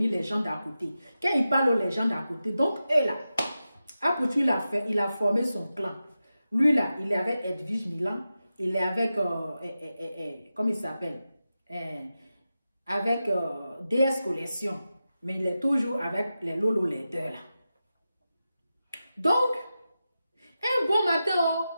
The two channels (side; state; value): both; inverted; correlation -0.92